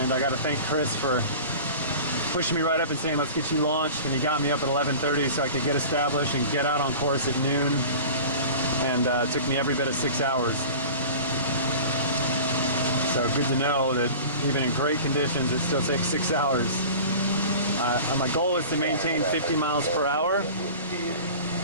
And I got to thank Chris for pushing me right up and saying, let's get you launched. And he got me up at 11:30 so I could get established and get out on course at noon. And it took me every bit of 6 hours. So good to know that even in great conditions, it still takes 6 hours. My goal is to maintain 50 miles per hour.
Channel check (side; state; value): both; inverted; correlation -0.38